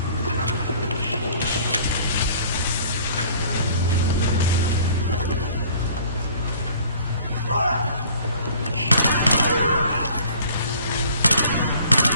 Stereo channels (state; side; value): inverted; both; correlation -0.52